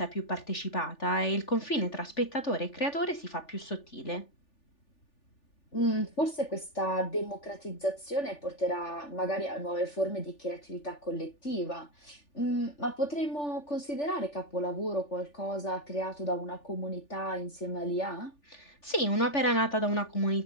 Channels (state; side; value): late; right; 3.4 ms